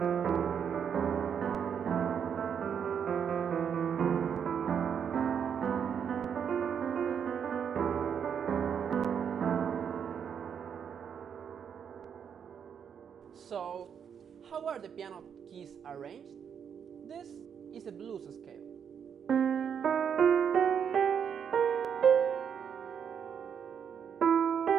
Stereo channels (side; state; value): left; quieter; 7.6 dB